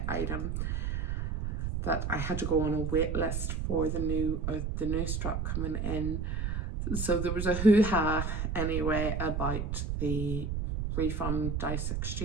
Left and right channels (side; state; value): right; noise; rumble, 1 dB below the sound